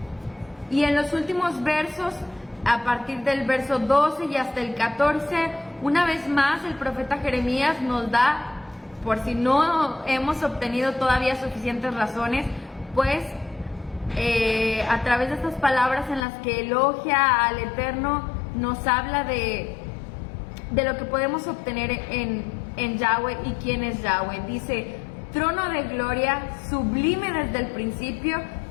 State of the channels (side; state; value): right; drops out; at 16.2 s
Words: Y en los últimos versos, a partir del verso 12 y hasta el 14, una vez más el profeta Jeremías nos da, por si no hemos obtenido todavía suficientes razones, pues a través de estas palabras en las que elogia al Eterno, nos habla de lo que podemos obtener en Yahweh y quién es Yahweh. Dice: trono de gloria, sublime desde el principio,